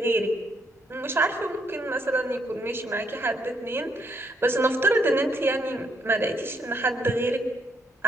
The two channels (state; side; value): normal; both; correlation 0.72